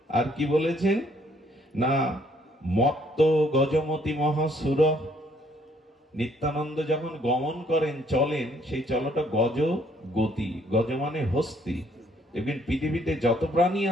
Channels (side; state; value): both; normal; correlation 0.66